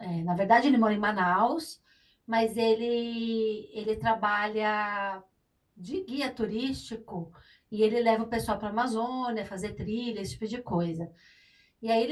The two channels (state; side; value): identical; both; correlation 1.00